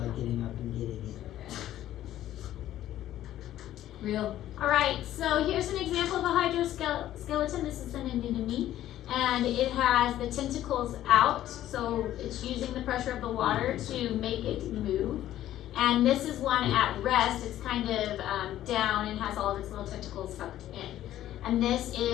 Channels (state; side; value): quieter; right; 12.9 dB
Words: getting up and getting it. Real. Alright, so here's an example of a hydroskeleton. This is an anemone, and it has the tentacles out, so it's using the pressure of the water to make it move. And this is one at rest. It's kind of down and has all of its little tentacles tucked in. And this